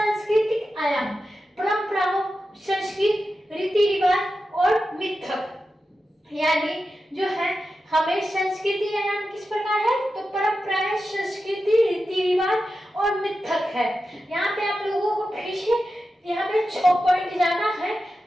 आयाम, परंपराओं, संस्कृति, रीति रिवाज और मिथक, यानी जो है हमें संस्कृति आयाम किस प्रकार है? तो परंपराएं, संस्कृति, रीति रिवाज और मिथक है। यहाँ पे आप लोगों को फिर से यहाँ पे 6 पॉइंट जाना है।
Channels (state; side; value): normal; both; correlation 0.91